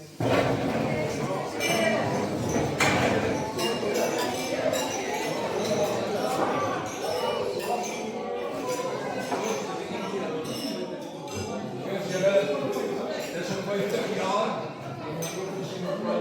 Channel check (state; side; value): identical; both; correlation 1.00